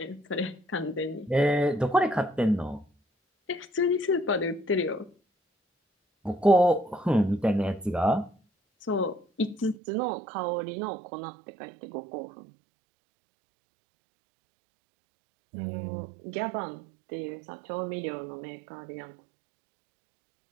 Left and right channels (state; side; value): drops out; left; at 9.8 s